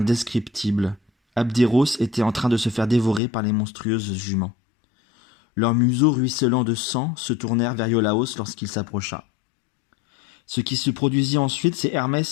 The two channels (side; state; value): right; drops out; at 3.2 s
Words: Abderos était en train de se faire dévorer par les monstrueuses juments. Leurs museaux ruisselants de sang se tournèrent vers Iolaos lorsqu'il s'approcha. Ce qui se produisit ensuite, c'est